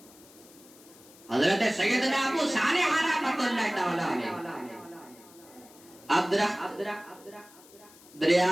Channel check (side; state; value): left; noise; hiss, 24 dB below the sound